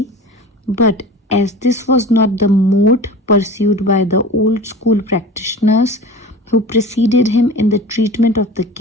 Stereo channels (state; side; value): normal; both; correlation 0.36